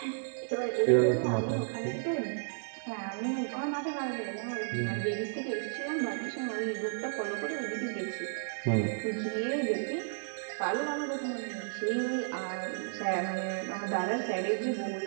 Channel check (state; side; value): silent; left; 56 dB below the other